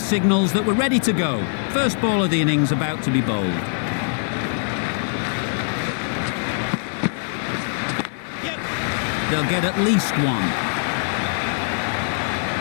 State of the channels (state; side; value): silent; right; 60 dB below the other